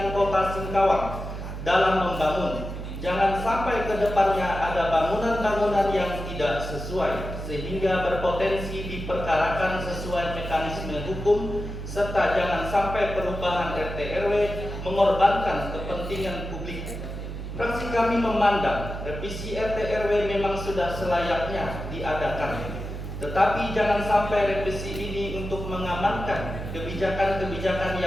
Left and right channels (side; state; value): right; noise; hum, 7 dB below the sound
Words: Kota Singkawang dalam membangun. Jangan sampai ke depannya ada bangunan-bangunan yang tidak sesuai sehingga berpotensi diperkarakan sesuai mekanisme hukum, serta jangan sampai perubahan RT RW mengorbankan kepentingan publik. Fraksi kami memandang revisi RT RW memang sudah selayaknya diadakan, tetapi jangan sampai revisi ini untuk mengamankan kebijakan-kebijakan